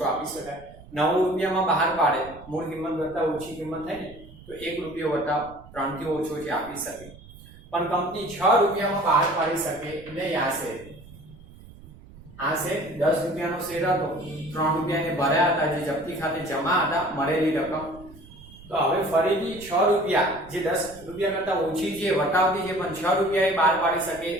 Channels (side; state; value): right; noise; rumble, 20 dB below the sound